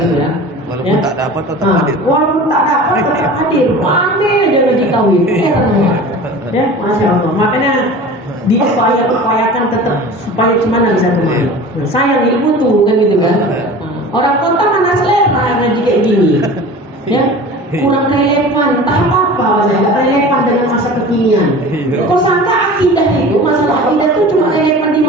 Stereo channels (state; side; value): normal; both; correlation 0.38